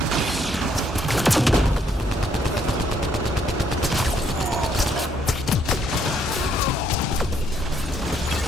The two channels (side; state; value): both; normal; correlation 0.69